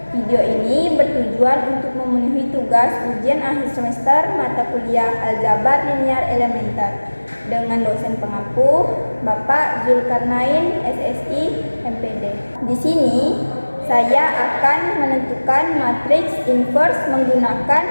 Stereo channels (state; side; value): inverted; both; correlation -1.00